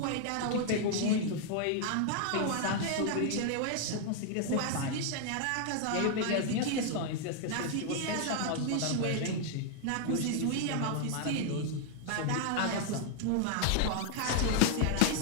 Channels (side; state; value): both; different; correlation 0.00